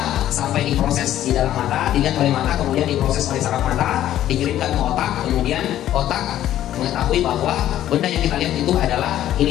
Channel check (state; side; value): quieter; right; 12.4 dB